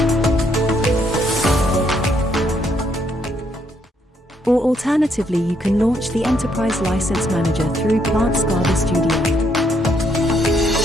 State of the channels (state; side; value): normal; both; correlation 0.73